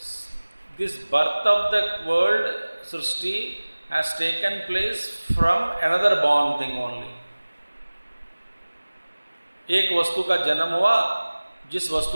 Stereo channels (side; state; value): both; inverted; correlation -1.00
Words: this birth of the world Srishti has taken place from another born thing only. एक वस्तु का जन्म हुआ, जिस